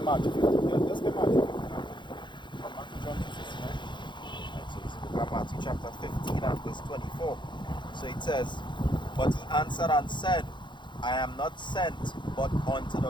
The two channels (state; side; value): late; right; 0.23 ms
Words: 15, yeah, let's get Matthew 15 now. Come back to John 16, right? So this is the book of Matthew chapter 15 and verse 24. So it says, but he answered and said, I am not sent but unto the